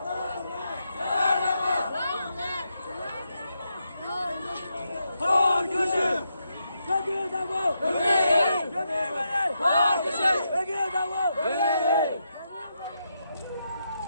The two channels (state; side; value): inverted; both; correlation -0.83